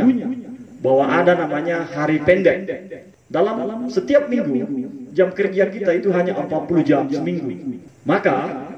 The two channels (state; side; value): identical; both; correlation 1.00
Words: bahwa ada namanya hari pendek. Dalam setiap minggu jam kerja kita itu hanya 40 jam seminggu. Maka